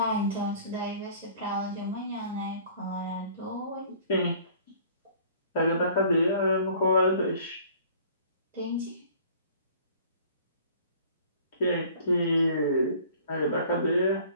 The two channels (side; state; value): both; inverted; correlation -0.51